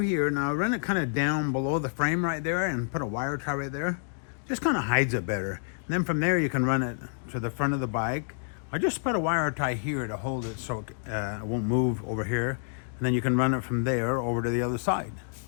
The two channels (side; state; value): right; silent; digital silence